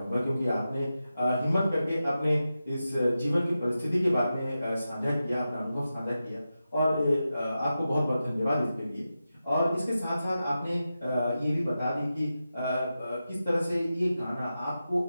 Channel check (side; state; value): both; inverted; correlation -0.91